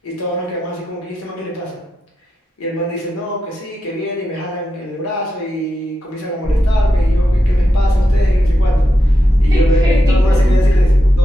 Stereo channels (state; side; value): normal; both; correlation 0.87